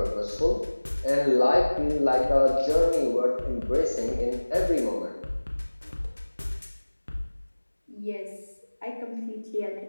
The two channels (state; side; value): inverted; both; correlation -1.00